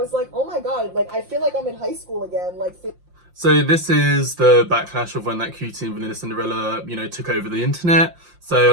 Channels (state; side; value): late; left; 5.7 ms